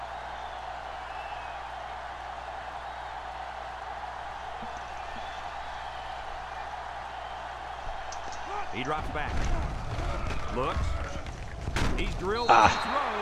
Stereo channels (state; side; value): identical; both; correlation 1.00